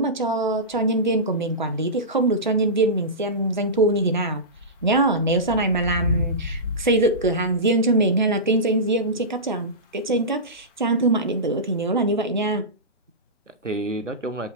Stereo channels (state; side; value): normal; both; correlation -0.17